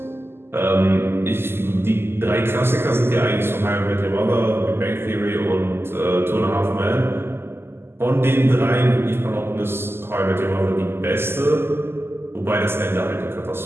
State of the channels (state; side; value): late; left; 0.12 ms